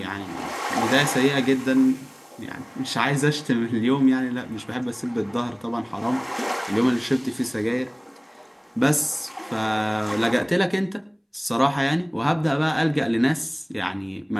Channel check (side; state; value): both; identical; correlation 1.00